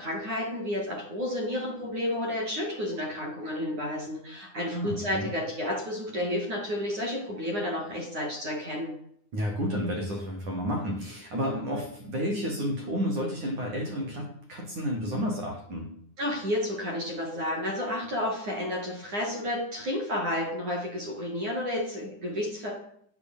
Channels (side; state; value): left; late; 9.7 ms